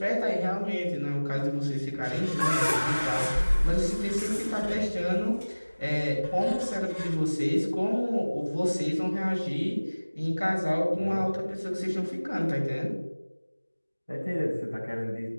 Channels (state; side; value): inverted; both; correlation -1.00